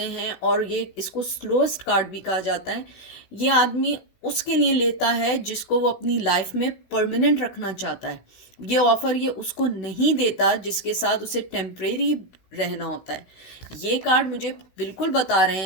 हैं, और ये इसको स्लोएस्ट कार्ड भी कहा जाता है, ये आदमी उसके लिए लेता है जिसको वो अपनी लाइफ में परमानेंट रखना चाहता है। ये ऑफर ये उसको नहीं देता जिसके साथ उसे टेम्परेरी रहना होता है। ये कार्ड मुझे बिल्कुल बता रहे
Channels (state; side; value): late; right; 16 ms